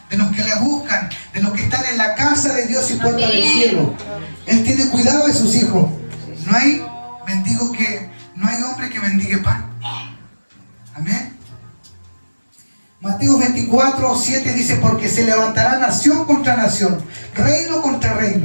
de los que le buscan, de los que están en la casa de Dios y puerta del cielo. Él tiene cuidado de sus hijos. No hay hombre que mendigue pan. Amén. Mateo 24, 7 dice, porque se levantará nación contra nación, reino contra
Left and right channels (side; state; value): both; inverted; correlation -1.00